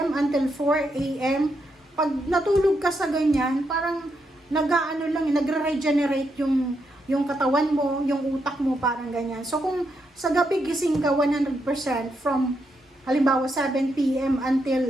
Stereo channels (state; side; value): normal; both; correlation 0.81